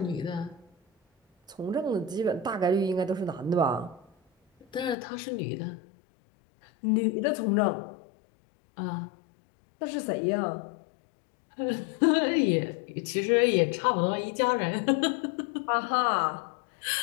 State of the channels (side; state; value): right; drops out; at 5.0 s